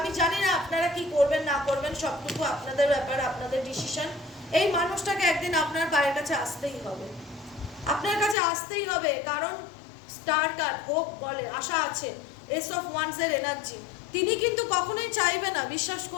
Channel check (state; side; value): drops out; right; at 8.3 s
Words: জানি না আপনারা কি করবেন না করবেন, সবটুকু আপনাদের ব্যাপার, আপনাদের ডিসিশন। এই মানুষটাকে একদিন আপনার পায়ের কাছে আসতেই হবে, আপনার কাছে আসতেই হবে। কারণ স্টার কার্ড হোপ বলে, আশা আছে, এস অফ ওয়ান্সের এনার্জি। তিনি কিন্তু কখনোই চাইবে না, বিশ্বাস